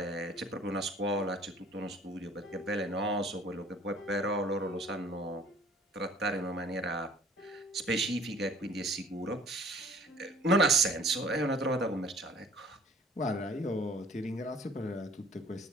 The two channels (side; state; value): both; normal; correlation 0.53